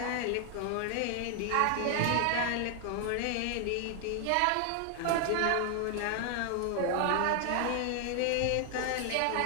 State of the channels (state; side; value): different; both; correlation 0.00